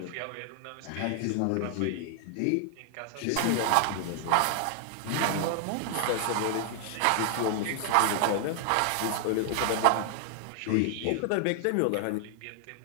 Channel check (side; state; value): both; different; correlation 0.00